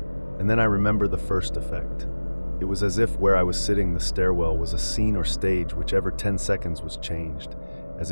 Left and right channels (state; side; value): inverted; both; correlation -1.00